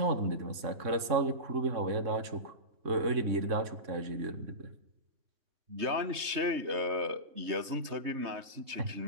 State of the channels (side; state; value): left; late; 3.2 ms